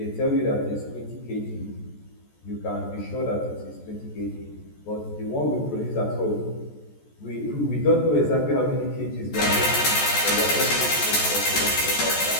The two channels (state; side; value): late; right; 14 ms